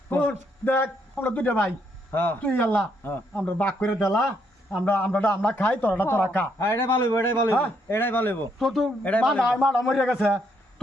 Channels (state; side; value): normal; both; correlation 0.74